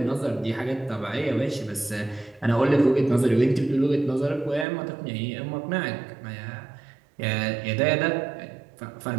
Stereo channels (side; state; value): left; drops out; at 4.7 s